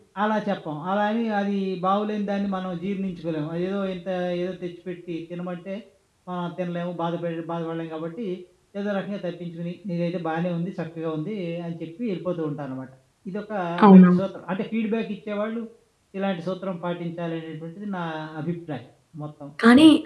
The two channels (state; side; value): identical; both; correlation 1.00